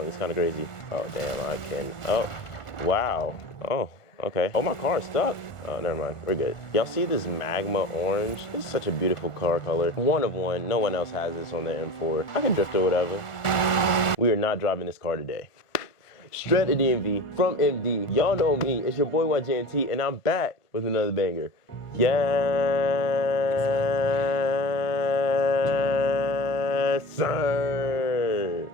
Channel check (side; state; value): right; late; 1.4 ms